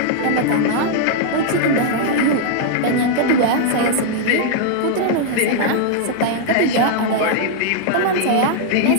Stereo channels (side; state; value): both; different; correlation -0.01